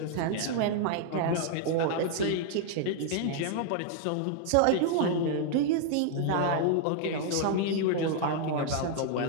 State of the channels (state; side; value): different; both; correlation 0.00